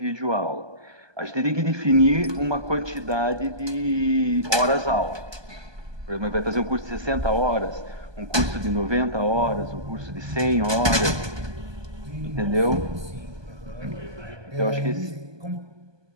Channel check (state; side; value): late; left; 1.2 ms